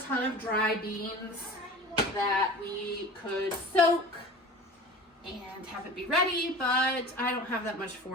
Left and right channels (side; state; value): both; normal; correlation 0.37